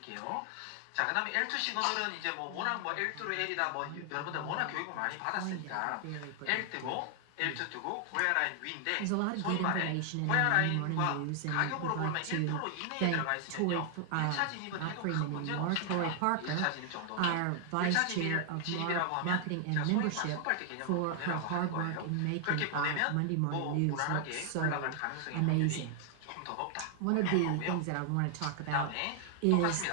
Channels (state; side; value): different; both; correlation 0.00